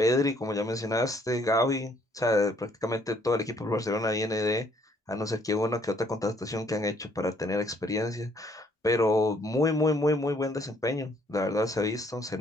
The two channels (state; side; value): normal; both; correlation 0.65